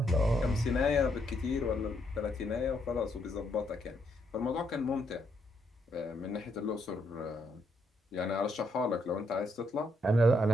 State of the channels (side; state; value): both; normal; correlation 0.76